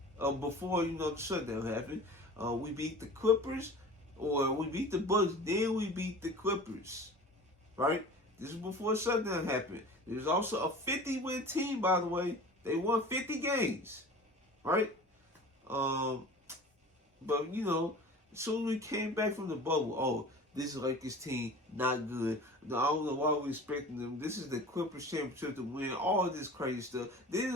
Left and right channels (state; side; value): normal; both; correlation 0.39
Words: before the shutdown happened, we beat the Clippers, or we beat the Bucks. Then we beat the Clippers, right? This is before the shutdown happened. There's also a 50-win team, by the way. They won 50 games, right? But as soon as we came back from the bubble, this Lakers team not good. I don't know why we're expecting them. This is the Clippers championship to win. All this crazy stuff.